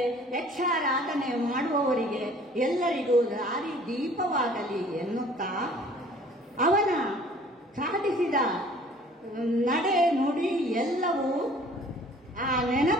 ಯಕ್ಷಾರಾಧನೆ ಮಾಡುವವರಿಗೆ ಎಲ್ಲರಿಗೂ ದಾರಿ ದೀಪವಾಗಲಿ ಎನ್ನುತ್ತಾ ಅವನ ಸಾಧಿಸಿದ ನಡೆ ನುಡಿ ಎಲ್ಲವೂ ಆ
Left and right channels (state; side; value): normal; both; correlation 0.52